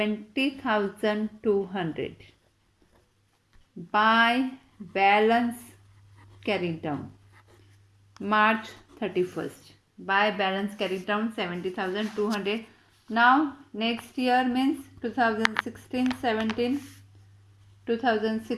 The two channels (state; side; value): identical; both; correlation 1.00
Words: by balance carried down March 31st. By balance carried down 70,200. Now next year means 2016 17,